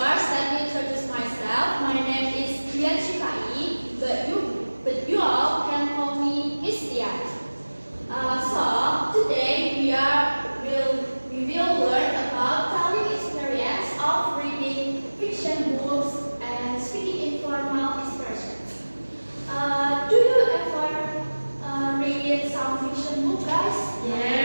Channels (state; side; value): inverted; both; correlation -1.00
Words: let me introduce myself. My name is Dian Shifai, but you all can call me Miss Dian. So today we will learn about telling experience of reading fiction books and speaking informal expressions. Do you ever read some fiction book, guys?